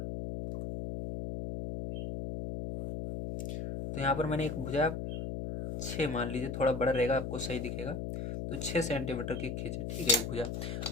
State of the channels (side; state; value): left; noise; hum, 4 dB below the sound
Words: तो यहाँ पर मैंने एक भुजा 6 मान लीजिए, थोड़ा बड़ा रहेगा आपको सही दिखेगा। तो 6 सेंटीमीटर की खींचे, ठीक है, एक भुजा।